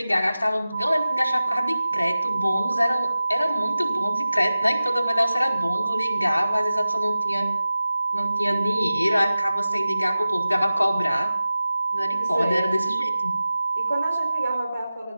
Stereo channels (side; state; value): both; inverted; correlation -0.95